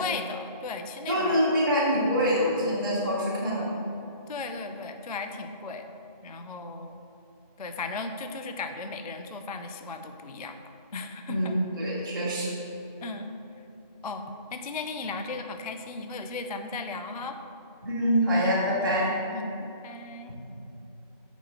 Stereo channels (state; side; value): inverted; both; correlation -0.44